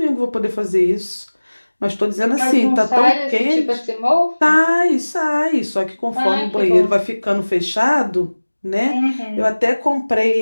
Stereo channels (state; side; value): inverted; both; correlation -1.00